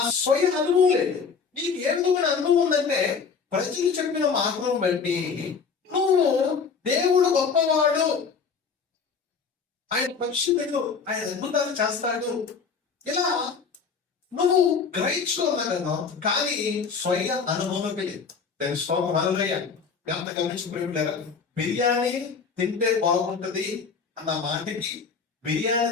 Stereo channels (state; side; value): quieter; right; 5.5 dB